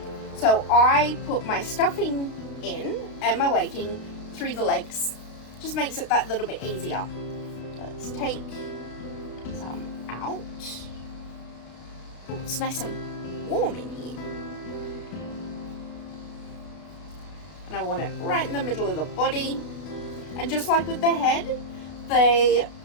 So I put my stuffing in and my weighting through the legs. Just makes it that little bit easier. Let's take some out. Oh, it's nice and warm in here. And I want it right in the middle of the body. And just like with the head,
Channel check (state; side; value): late; right; 33 ms